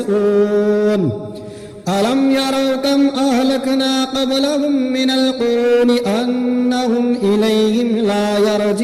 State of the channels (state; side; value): identical; both; correlation 1.00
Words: ألم يروا كم أهلكنا قبلهم من القرون أنهم إليهم لا